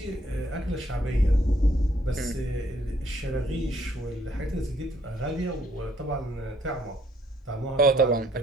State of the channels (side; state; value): both; normal; correlation 0.67